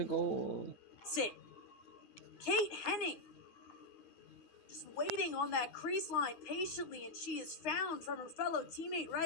goal. Sit. Kate Henning. Just waiting on that crease line patiently, and she is found from her fellow teammate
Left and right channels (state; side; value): late; right; 9.6 ms